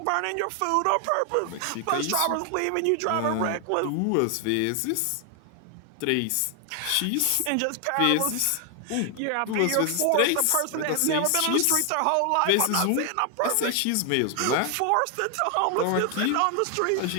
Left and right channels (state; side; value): different; both; correlation 0.00